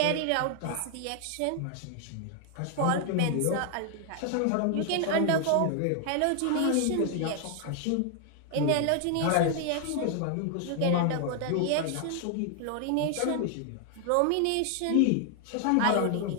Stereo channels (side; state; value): both; different; correlation 0.00